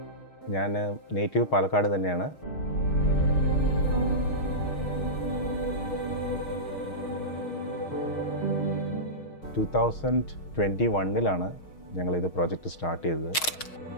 ഞാൻ native Palakkad തന്നെയാണ്. To 2021 ഞങ്ങളിത് പ്രോജക്റ്റ് സ്റ്റാർട്ട് ചെയ്തത്.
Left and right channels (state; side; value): late; right; 6.4 ms